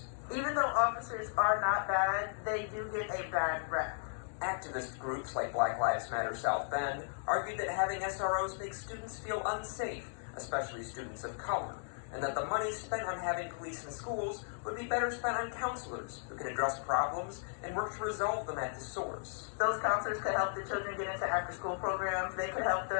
Even though officers are not bad, they do get a bad rep. Activist groups like Black Lives Matter South Bend argued that having SROs makes students feel unsafe, especially students of color, and that the money spent on having police in schools would be better spent on counselors who can address problems and work to resolve them at the source. Those counselors could help the children get into after-school programs. They could help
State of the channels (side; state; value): right; silent; digital silence